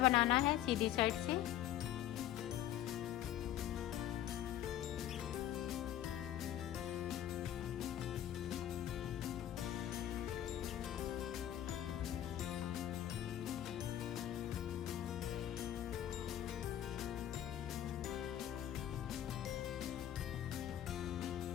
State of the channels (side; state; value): right; quieter; 11.8 dB